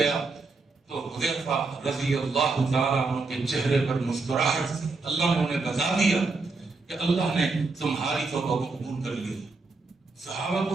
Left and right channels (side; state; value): left; quieter; 3.8 dB